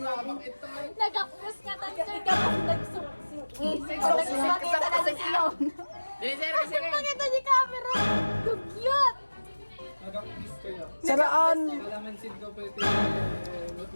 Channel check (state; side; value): inverted; both; correlation -1.00